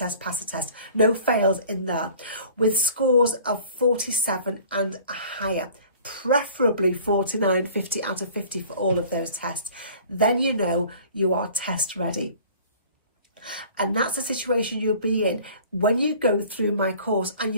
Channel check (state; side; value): inverted; both; correlation -0.48